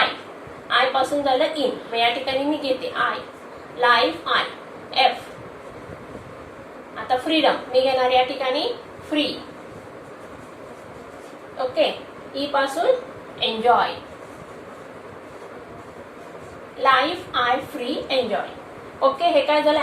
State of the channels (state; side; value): identical; both; correlation 1.00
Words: I पासून झालं इन, मग या ठिकाणी मी घेते I, लाईफ I, F. आता फ्रीडम मी घेणार या ठिकाणी फ्री. ओके. E पासून enjoy, life I free enjoy. Okay, हे काय झालं,